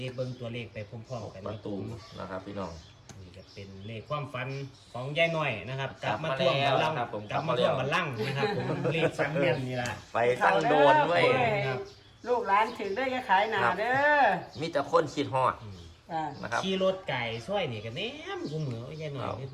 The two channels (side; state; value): both; identical; correlation 1.00